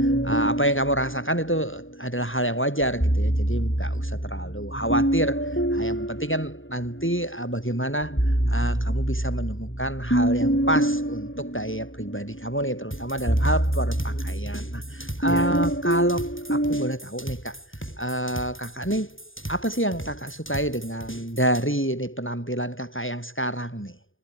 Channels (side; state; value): right; late; 0.58 ms